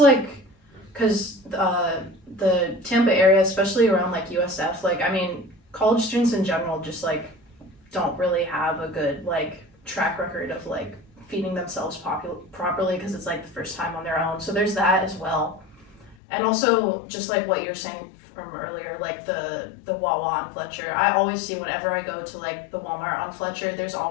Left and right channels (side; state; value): right; drops out; at 16.2 s